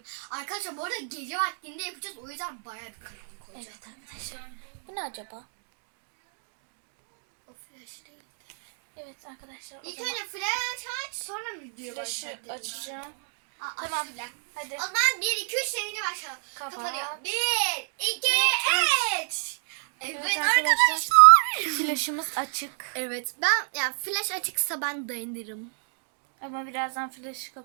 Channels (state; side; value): silent; left; digital silence